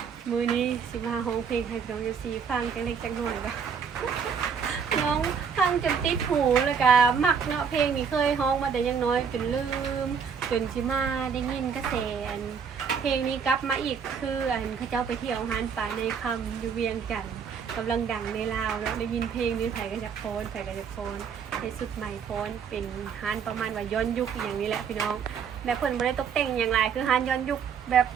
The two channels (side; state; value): left; quieter; 6.7 dB